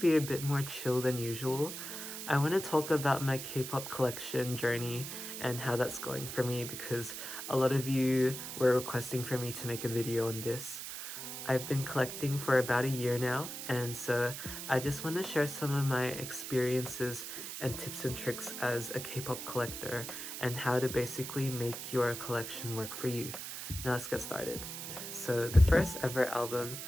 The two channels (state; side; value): noise; right; hiss, 7 dB below the sound